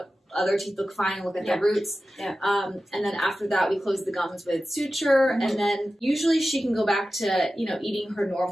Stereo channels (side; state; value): both; normal; correlation 0.94